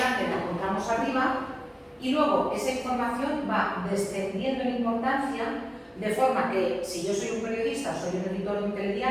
la encontramos arriba y luego esa información va descendiendo en importancia, de forma que si yo soy un periodista, soy un editor de un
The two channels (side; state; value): both; identical; correlation 1.00